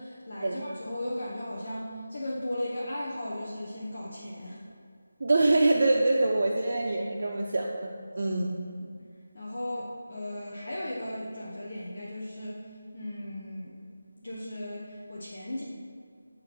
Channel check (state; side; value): inverted; both; correlation -0.94